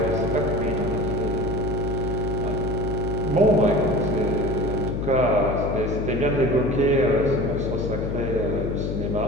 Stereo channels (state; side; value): noise; left; hum, 2 dB below the sound